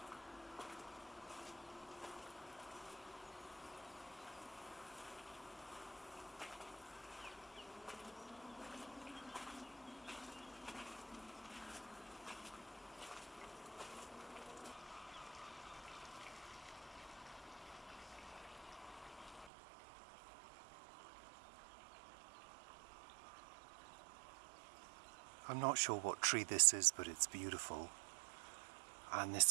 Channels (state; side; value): drops out; left; at 19.5 s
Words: I'm not sure what tree this is, but it's beautiful. And